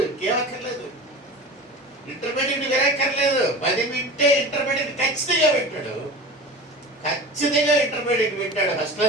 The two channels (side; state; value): both; normal; correlation 0.34